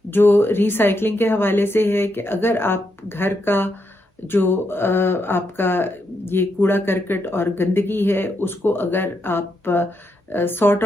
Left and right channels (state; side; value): normal; both; correlation 0.81